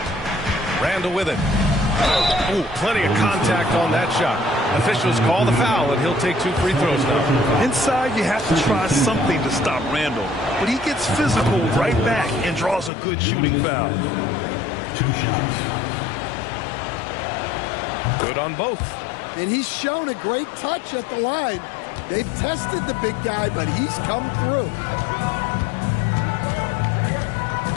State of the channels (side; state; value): right; drops out; at 12.9 s